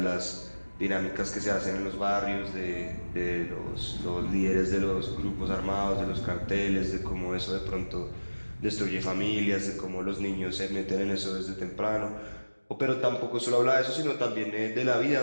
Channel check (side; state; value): both; inverted; correlation -1.00